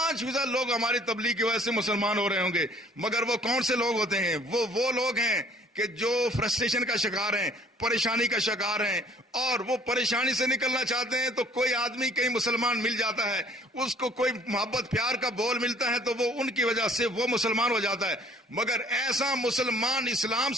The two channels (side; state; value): both; normal; correlation 0.56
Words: لوگ ہماری تبلیغ کی وجہ سے مسلمان ہو رہے ہوں گے، مگر وہ کون سے لوگ ہوتے ہیں؟ وہ لوگ ہیں کہ جو فرسٹریشن کا شکار ہیں، پریشانی کا شکار ہیں، اور وہ پریشانی سے نکلنا چاہتے ہیں تو کوئی آدمی کہیں مسلمان مل جاتا ہے، اس کو کوئی محبت پیار کا بول ملتا ہے تو وہ ان کی وجہ سے وہ مسلمان ہو جاتا ہے، مگر ایسا مسلمان اسلام